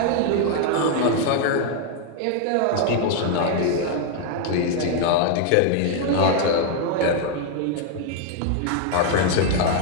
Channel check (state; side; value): different; both; correlation 0.00